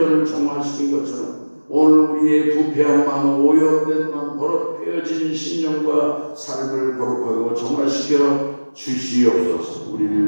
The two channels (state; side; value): inverted; both; correlation -1.00